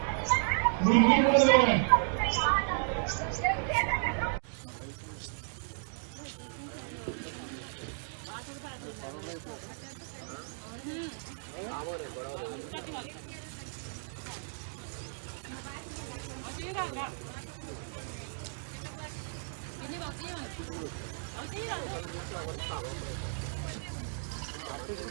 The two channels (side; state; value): left; silent; digital silence